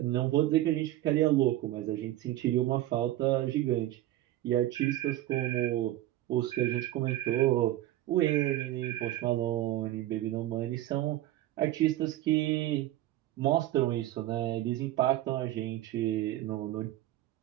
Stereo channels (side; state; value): left; quieter; 14.7 dB